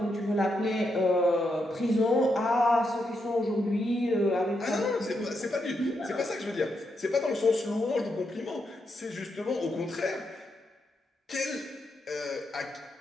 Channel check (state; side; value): normal; both; correlation 0.82